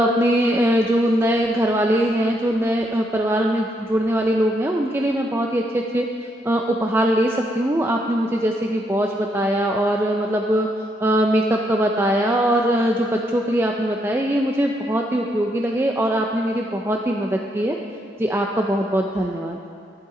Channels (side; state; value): both; normal; correlation 0.76